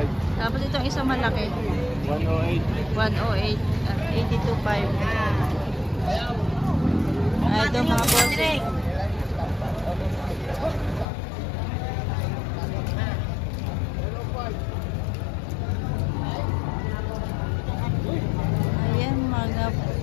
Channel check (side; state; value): right; drops out; at 11.1 s